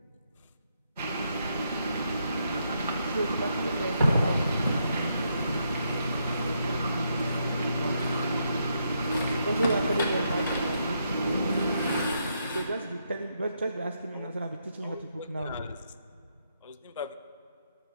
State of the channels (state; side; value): inverted; both; correlation -0.79